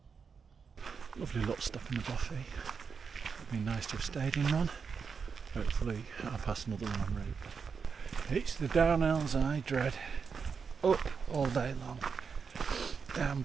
Lovely little stuff in the Buffy. It'd be nice to have stayed in one. Hopefully I'll pass another one en route. It's the downhills I dread. Up all day long.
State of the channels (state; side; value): quieter; left; 5.8 dB